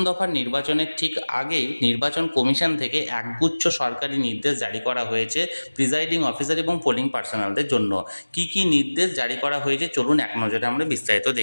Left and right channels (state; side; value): inverted; both; correlation -1.00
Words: দফার নির্বাচনের ঠিক আগেই নির্বাচন কমিশন থেকে একগুচ্ছ সরকারি নির্দেশ জারি করা হয়েছে প্রিজাইডিং অফিসার এবং পোলিং পার্সোনালদের জন্য। কি কি নির্দেশ জারি করা হয়েছে চলুন এক নজরে আমরা বিস্তারিত